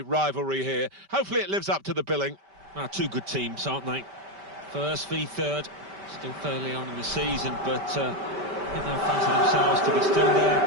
here. Hopefully it lives up to the billing. Two good teams, aren't they? First v third, still fairly on in the season, but I think they'll fancy themselves to be still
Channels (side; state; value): left; late; 5.1 ms